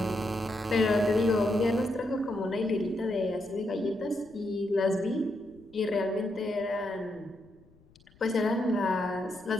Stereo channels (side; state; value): left; noise; rumble, 28 dB below the sound